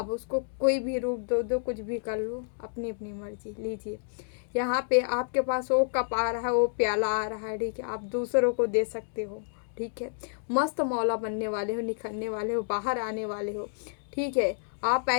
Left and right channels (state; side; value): silent; right; digital silence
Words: उसको कोई भी रूप दो, कुछ भी कर लो, अपनी अपनी मर्जी लीजिए। यहाँ पे आपके पास वो कप आ रहा है, वो प्याला आ रहा है। ठीक है। आप दूसरों को दे सकते हो। ठीक है। मस्त मौला बनने वाले हो, निखरने वाले हो, बाहर आने वाले हो। ठीक है। आप